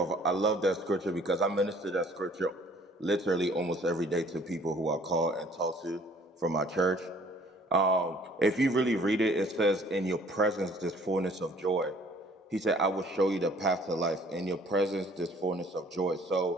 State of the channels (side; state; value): both; normal; correlation 0.56